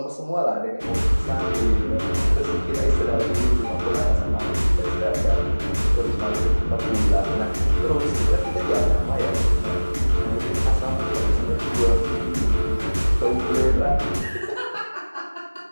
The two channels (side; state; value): both; inverted; correlation -1.00